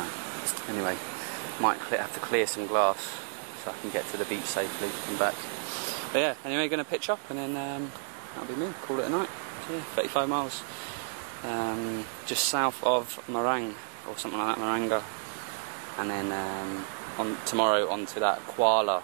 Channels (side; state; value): left; silent; digital silence